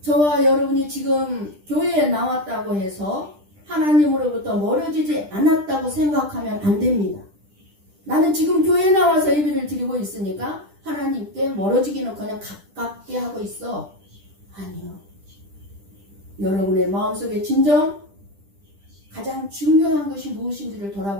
저와 여러분이 지금 교회에 나왔다고 해서 하나님으로부터 멀어지지 않았다고 생각하면 안 됩니다. 나는 지금 교회에 나와서 예배를 드리고 있으니까 하나님께 멀어지기는커녕 가깝게 하고 있어. 아니요. 여러분의 마음속에 진정 가장 중요한 것이 무엇인지를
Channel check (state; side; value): late; left; 10 ms